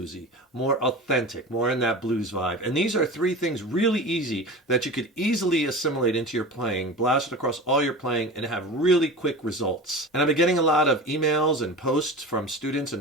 more authentic, more in that blues vibe. And these are 3 things really easy that you could easily assimilate into your playing, blast it across all your playing, and have really quick results. And I've been getting a lot of emails and posts from students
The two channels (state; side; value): normal; both; correlation 0.32